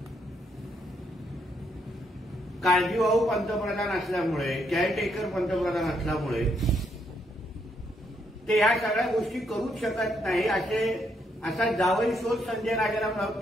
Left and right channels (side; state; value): both; normal; correlation 0.75